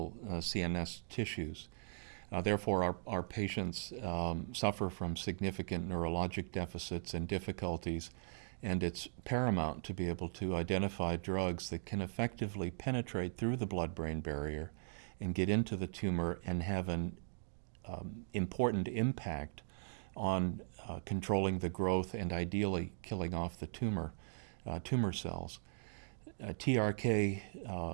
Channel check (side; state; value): left; silent; digital silence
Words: CNS tissues. Therefore, our patients suffer from significant neurologic deficits and difficulties, and it's paramount to be able to identify drugs that can effectively penetrate through the blood-brain barrier and get into the tumor and have an important impact on controlling the growth and ideally killing off the tumor cells. TRK